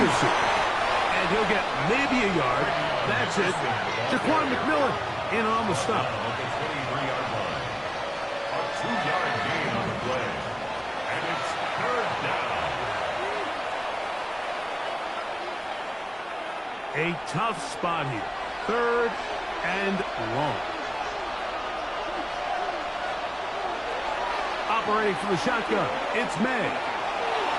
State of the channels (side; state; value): both; identical; correlation 1.00